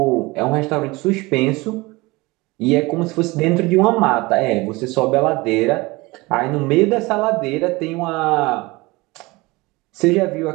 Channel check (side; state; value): left; quieter; 22.8 dB